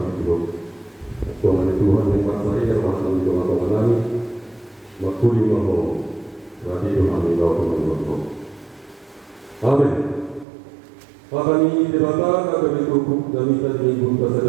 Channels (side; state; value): left; drops out; at 10.5 s